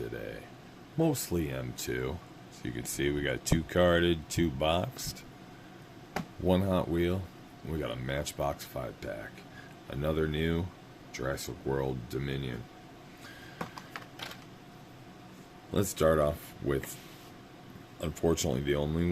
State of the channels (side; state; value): both; identical; correlation 1.00